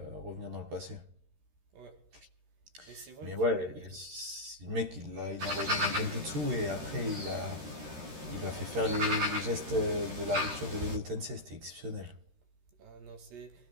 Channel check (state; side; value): late; left; 13 ms